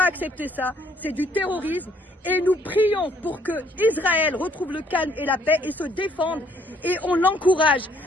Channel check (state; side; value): normal; both; correlation 0.65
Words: accepter ça. C'est du terrorisme. Et nous prions pour que Israël retrouve le calme et la paix et se défende. Et on l'encourage